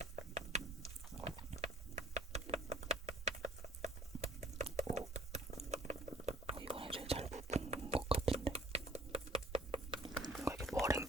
이번에 제일 잘 부푼 것 같은데. 뭔가 이렇게 머랭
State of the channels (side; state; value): both; normal; correlation 0.55